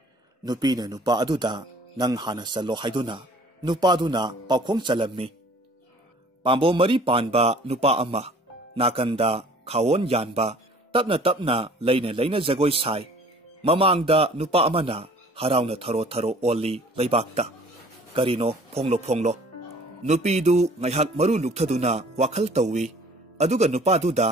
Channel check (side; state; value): both; normal; correlation 0.51